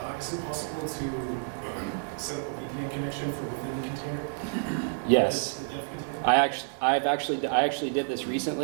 it possible to set up a VPN connection from within the container? Yes. The dev container? I actually did this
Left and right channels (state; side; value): silent; left; digital silence